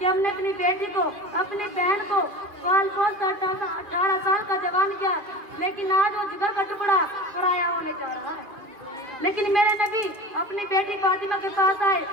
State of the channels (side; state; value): left; late; 2.5 ms